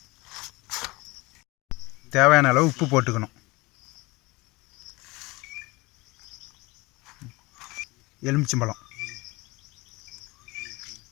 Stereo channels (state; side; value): quieter; right; 23.2 dB